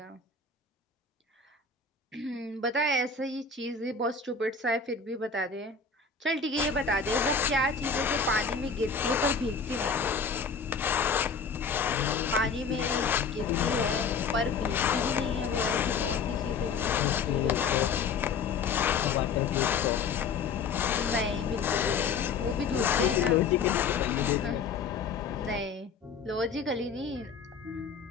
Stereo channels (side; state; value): right; quieter; 5.3 dB